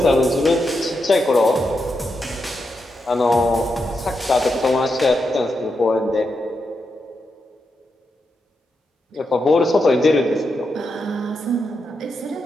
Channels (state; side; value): normal; both; correlation 0.85